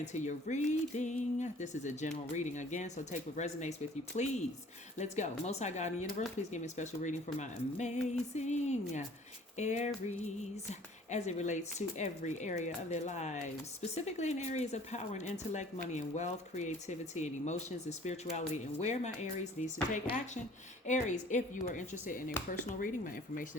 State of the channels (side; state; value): both; normal; correlation 0.52